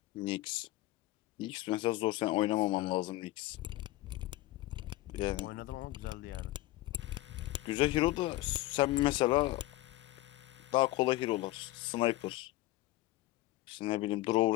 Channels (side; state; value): right; quieter; 17.3 dB